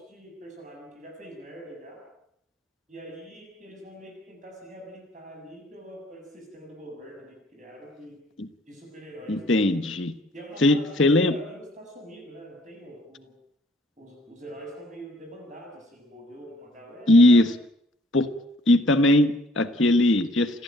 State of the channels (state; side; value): normal; both; correlation 0.61